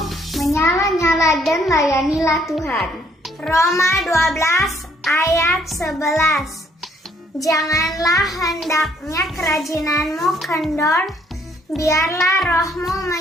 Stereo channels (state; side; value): normal; both; correlation 0.66